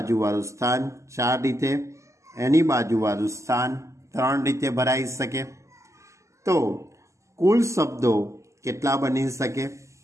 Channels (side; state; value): left; late; 0.14 ms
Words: સ્થાન 4 રીતે, એની બાજુવાળું સ્થાન 3 રીતે ભરાઈ શકે. તો કુલ શબ્દો કેટલા બની શકે?